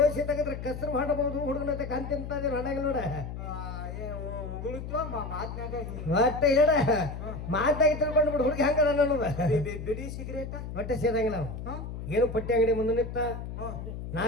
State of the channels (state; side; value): noise; left; hum, 8 dB below the sound